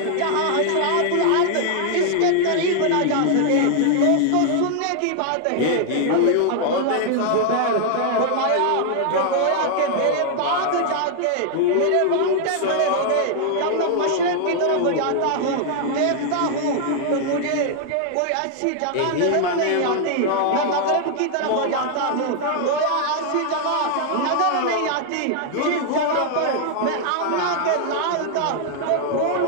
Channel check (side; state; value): both; different; correlation 0.00